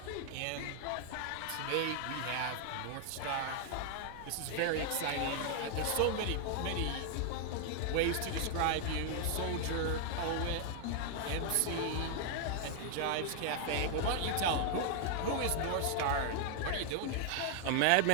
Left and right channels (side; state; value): both; different; correlation 0.00